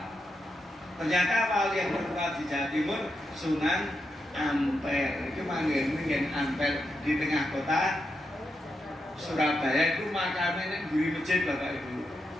Ternyata wali yang tertua di Jawa Timur Sunan Ampel. Itu manggil Ampel di tengah kota Surabaya. Itu makamnya di masjid Bapak Ibu.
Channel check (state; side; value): normal; both; correlation 0.85